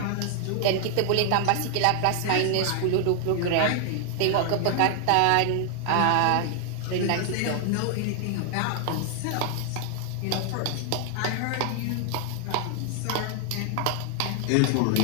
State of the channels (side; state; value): both; different; correlation 0.00